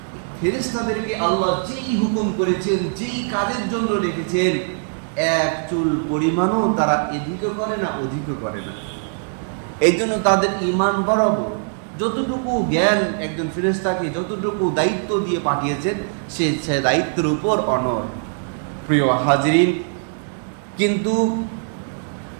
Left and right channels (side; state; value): left; silent; digital silence